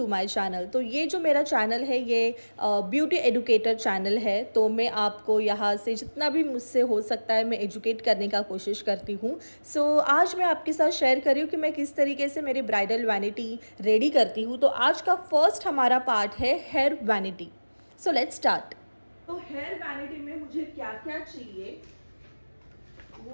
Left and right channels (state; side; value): inverted; both; correlation -1.00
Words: my channel. तो ये जो मेरा चैनल है ये ब्यूटी एडुकेटर चैनल है। तो मैं आपको यहाँ से जितना भी मुझसे हो सकता है मैं एजुकेट करने का कोशिश करती हूँ। सो आज मैं आपके साथ शेयर कर रही हूँ कि मैं किस तरीके से मेरी ब्राइडल वैनिटी रेडी करती हूँ। तो आज का फर्स्ट हमारा पार्ट है hair vanity. So let's start. तो हेयर वैनिटी में मुझे क्या क्या चाहिए